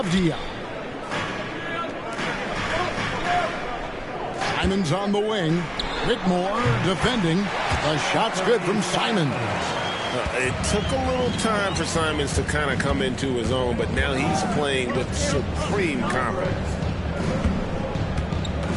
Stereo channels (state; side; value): identical; both; correlation 1.00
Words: Simons on the wing. Whitmore defending. The shot's good from Simons. It took a little time for Simons to kind of come into his own, but now he's playing with supreme confidence.